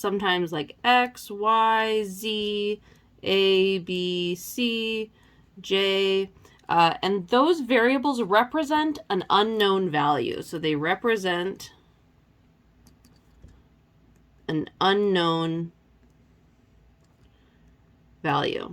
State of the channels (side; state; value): both; identical; correlation 1.00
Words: like X, Y, Z, A, B, C, J, and those variables represent an unknown value. So they represent an unknown